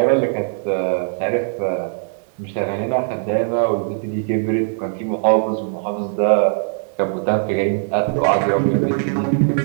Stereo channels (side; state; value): left; silent; digital silence